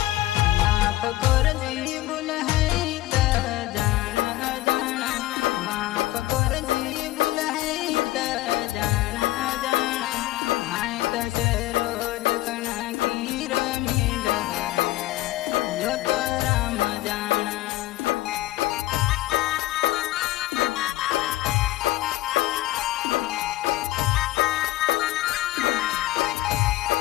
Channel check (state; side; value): quieter; right; 16.8 dB